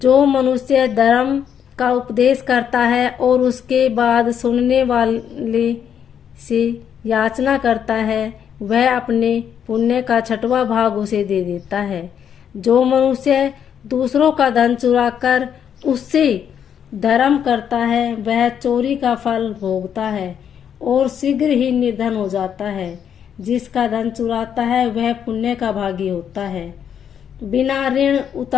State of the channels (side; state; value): right; quieter; 8.5 dB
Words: मनुष्य धर्म का उपदेश करता है और उसके बाद सुनने वाले से याचना करता है, वह अपने पुण्य का 6वां भाग उसे दे देता है। जो मनुष्य दूसरों का धन चुराकर उससे धर्म करता है, वह चोरी का फल भोगता है और शीघ्र ही निर्धन हो जाता है। जिसका धन चुराता है, वह पुण्य का भागी होता है। बिना ऋण